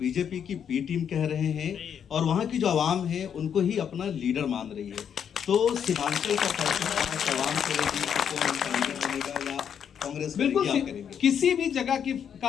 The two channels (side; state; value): right; quieter; 8.1 dB